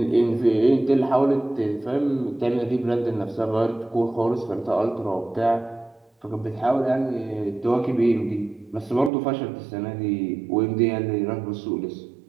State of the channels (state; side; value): drops out; left; at 9.1 s